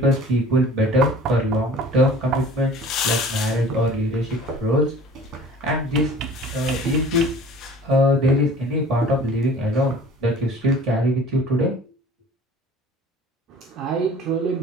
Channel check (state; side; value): normal; both; correlation 0.47